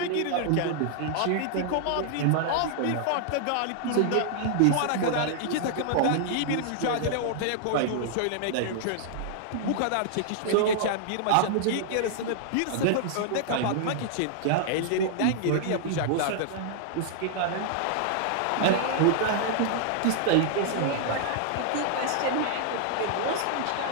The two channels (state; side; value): different; both; correlation -0.01